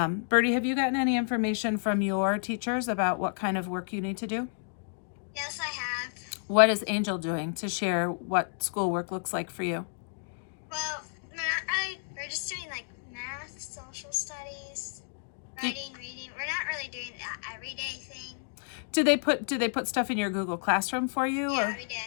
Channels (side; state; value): right; silent; digital silence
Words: have you gotten any information from your teachers about what kind of work you need to do? Yes, I have. What is Angel doing to share what schoolwork looks like for you? Well, I we're just doing like math, social studies, writing, reading. We're not really doing that everyday thing. Do they put stuff in your Google Classroom for you? Yeah, or? we